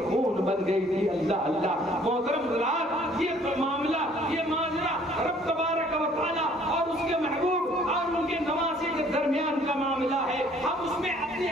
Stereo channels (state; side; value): normal; both; correlation 0.58